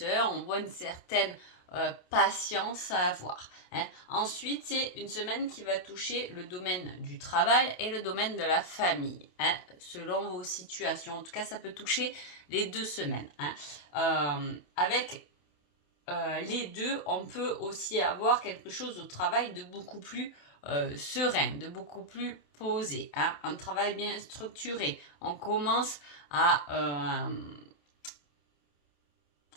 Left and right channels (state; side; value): late; right; 27 ms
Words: on voit une certaine patience à avoir. Ensuite, c'est une semaine qui va toucher le domaine du travail et le domaine de la famille, selon vos situations. En tout cas, ça peut toucher les 2 semaines. Avec les deux, on peut aussi avoir quelque chose au travail de beaucoup plus serein, de beaucoup plus posé, un travail bien structuré. On commence à